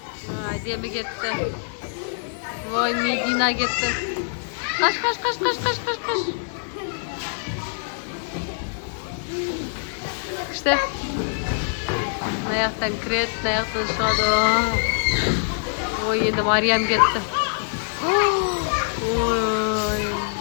Ademi ketdi. Voy, Medina ketdi. Qash. İşte. Ayaktan kiret, ayaktan шығады. Oy, endi Maryam ketdi. Oy.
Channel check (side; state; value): right; silent; digital silence